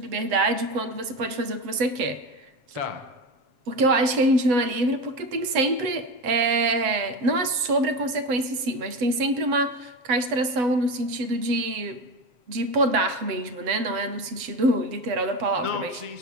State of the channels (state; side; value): late; left; 7.5 ms